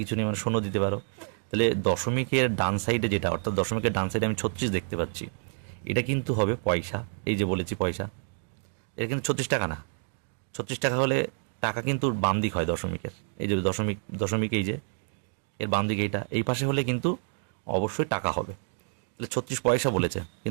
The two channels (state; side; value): silent; left; 56 dB below the other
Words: নেই, মানে শূন্য দিতে পারো। তাহলে দশমিকের ডান সাইডে যেটা, অর্থাৎ দশমিকের ডান সাইডে আমি 36 দেখতে পাচ্ছি, এটা কিন্তু হবে পয়সা। এই যে বলেছি পয়সা, এটা কিন্তু 36 টাকা না। 36 টাকা হলে টাকা কিন্তু বাম দিক হয় দশমিকের, এই যে দশমিক, দশমিক এই যে এর বাম দিকে এইটা, এই পাশে হলে কিন্তু অবশ্যই টাকা হবে। তাহলে 36 পয়সা বলেছে,